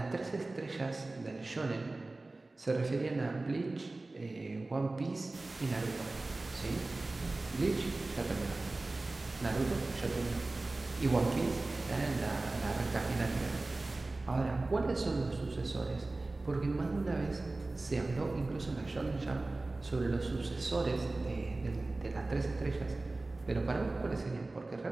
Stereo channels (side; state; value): left; quieter; 3.1 dB